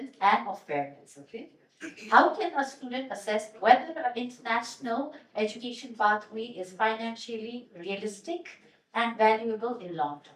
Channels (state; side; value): identical; both; correlation 1.00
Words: and of parents, okay? How can a student assess whether an international education pathway is financially realistic and valuable in long